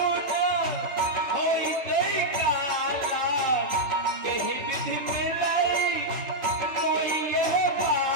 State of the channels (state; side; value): late; left; 3.1 ms